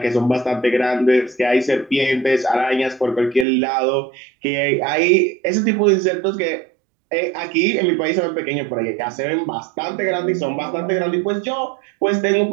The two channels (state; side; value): drops out; left; at 3.5 s